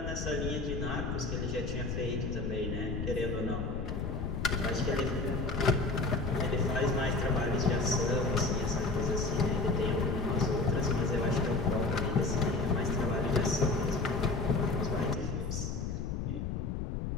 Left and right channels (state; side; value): noise; left; rumble, 2 dB below the sound